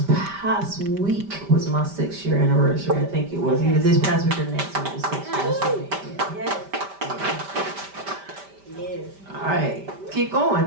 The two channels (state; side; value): late; left; 5.1 ms